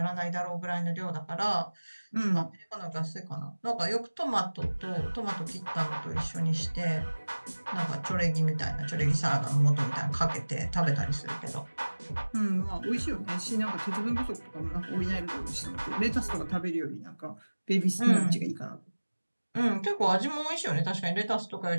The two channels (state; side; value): inverted; both; correlation -1.00